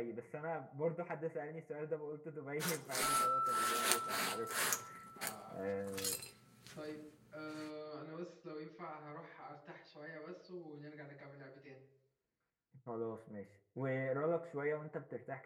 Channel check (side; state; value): both; identical; correlation 1.00